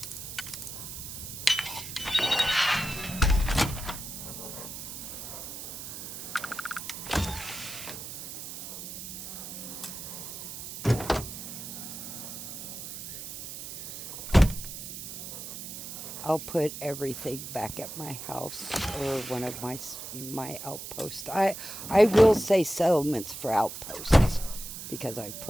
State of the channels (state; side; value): noise; right; hiss, 9 dB below the sound